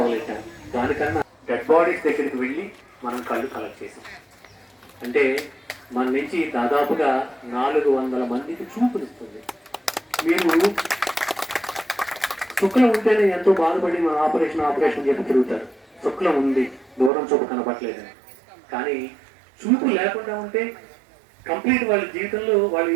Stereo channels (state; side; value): drops out; left; at 17.1 s